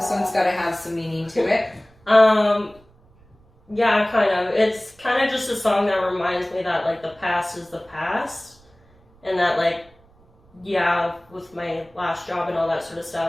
one's got to have some meaning to it. Yeah, kind of. It's kind of just a song that reminds me that, like, the past is the past. And that, like, yeah, with my last job and all that sort of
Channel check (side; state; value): right; noise; rumble, 30 dB below the sound